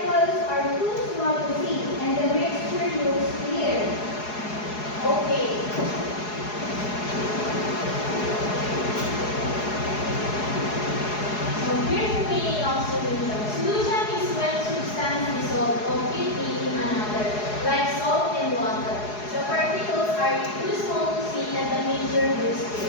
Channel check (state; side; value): late; right; 4.8 ms